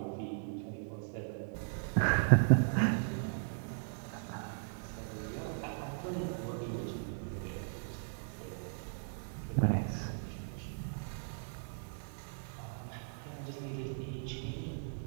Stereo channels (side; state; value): left; silent; digital silence